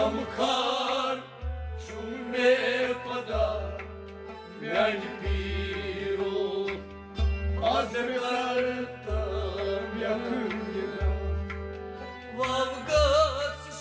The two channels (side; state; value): both; identical; correlation 1.00